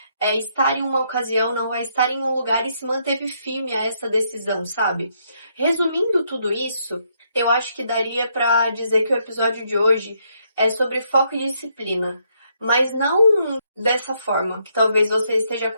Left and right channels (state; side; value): inverted; both; correlation -0.74